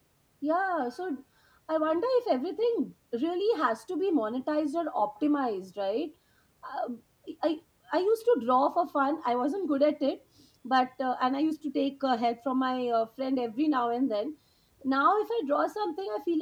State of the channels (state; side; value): identical; both; correlation 1.00